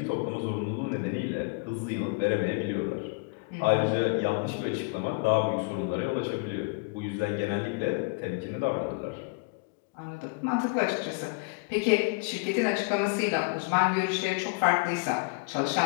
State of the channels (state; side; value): quieter; right; 30.3 dB